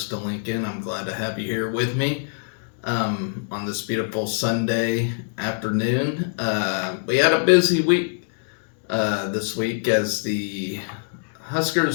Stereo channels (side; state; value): right; silent; digital silence